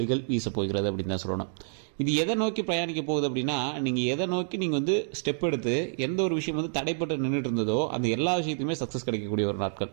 வீச போகிறது அப்படின்னு தான் சொல்லணும். இது எதை நோக்கி பிரயாணிக்க போகுது அப்படின்னா, நீங்கள் எதை நோக்கி நீங்கள் ஸ்டெப் எடுத்து எந்த ஒரு விஷயம் தடைப்பட்டு நின்றுட்டு இருந்ததோ அந்த எல்லா விஷயத்தையுமே சக்ஸஸ் கிடைக்கக்கூடிய ஒரு நாட்கள்.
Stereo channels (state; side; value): silent; left; digital silence